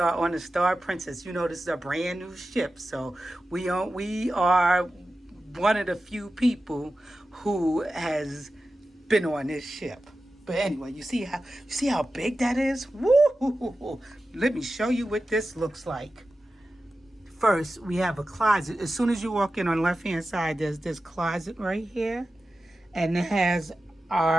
on the Star Princess. You know, this is a brand new ship, so we are one of the few people who has been on this ship. But anyway, you see how big that is? Woo! Let me show you what this looks like. First, we have a closet. As soon as you walk in on the left-hand side, there's this closet right here. And it has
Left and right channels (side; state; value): both; normal; correlation 0.93